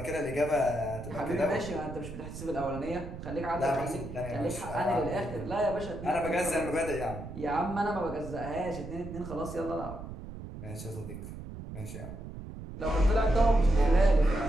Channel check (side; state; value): right; noise; rumble, 11 dB below the sound